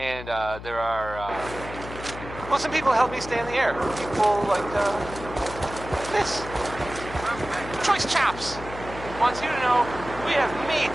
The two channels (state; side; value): noise; left; hum, 12 dB below the sound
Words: there are well, some people help me stay in the air. People like this Choice Chops wants you to know we have meat,